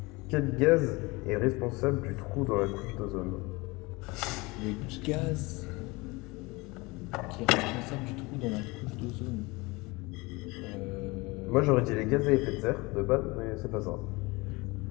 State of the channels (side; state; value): right; quieter; 24.3 dB